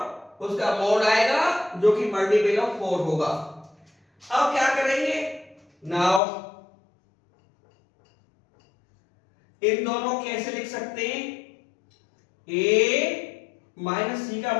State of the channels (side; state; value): right; drops out; at 6.2 s